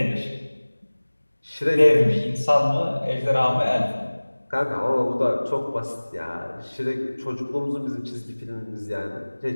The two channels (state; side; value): inverted; both; correlation -1.00